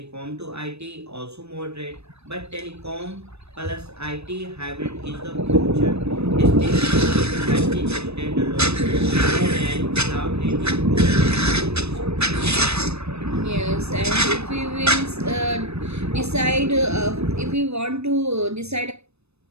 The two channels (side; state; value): left; late; 0.79 ms